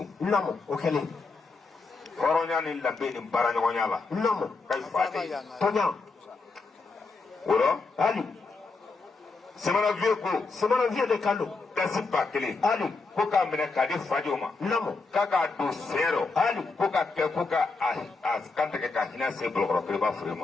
namo o kɛlen hɔrɔnya ni danbe ni baaraɲɔgɔnya la namo ka fa de tɔɲa o la hali Semana Vieux ko Semana Vieux de kan don dasi 1000 hali ko k'a minɛ k'a di Fadio ma namo k'a k'a don sen rɔ hali ko ka kɛ ko ka a kantigɛ ka hinɛ se Bolokɔrɔ Keriba Fure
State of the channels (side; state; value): right; quieter; 4.0 dB